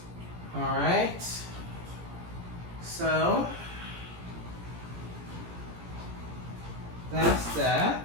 All right, so that's that.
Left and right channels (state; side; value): late; left; 17 ms